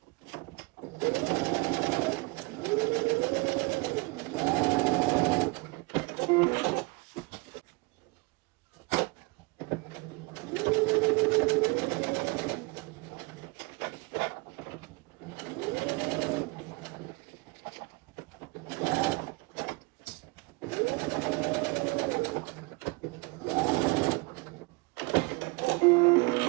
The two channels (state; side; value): quieter; left; 26.5 dB